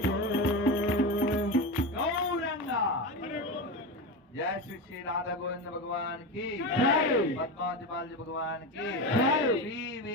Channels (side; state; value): both; normal; correlation 0.20